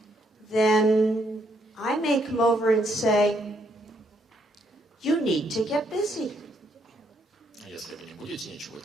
then I may come over and say, you need to get busy. Если вы не будете ничего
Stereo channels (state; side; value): normal; both; correlation 0.73